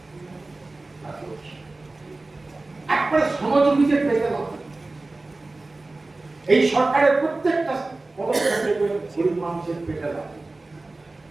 একবারে সহযোগীদের পেতে হবে। এই সরকারের প্রত্যেকটা পদক্ষেপে গরিব মানুষের পেটে লাগে,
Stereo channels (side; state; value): left; quieter; 3.2 dB